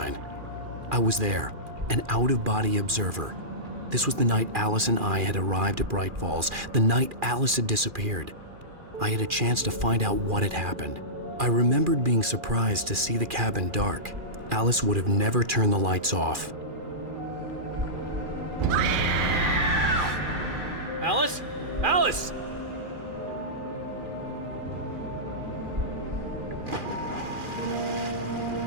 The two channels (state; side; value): late; left; 2.4 ms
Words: I was there, an out-of-body observer. This was the night Alice and I had arrived at Bright Falls, the night Alice had disappeared. I had a chance to find out what had happened. I remembered being surprised to see the cabin dark. Alice would have never turned the lights off. Alice? Alice!